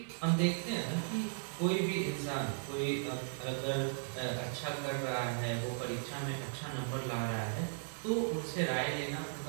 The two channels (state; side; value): silent; left; digital silence